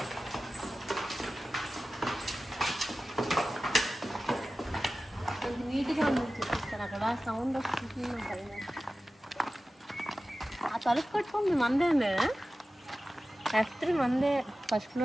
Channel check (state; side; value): normal; both; correlation 0.95